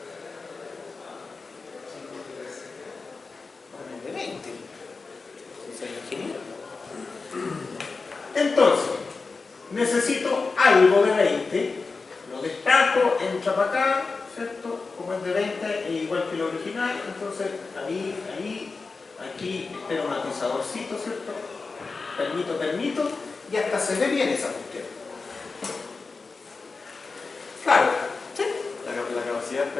Pongo de 20. Soy ingeniero. Entonces, necesito algo de 20. Lo destaco, entra para acá, ¿cierto? Como es de 20, es igual que lo original. Entonces, ahí, aquí, espero un atizadorcito, ¿cierto? Permito. Y hasta se ve bien esa cuestión. Claro, ¿sí? La capacidad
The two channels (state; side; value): quieter; right; 4.2 dB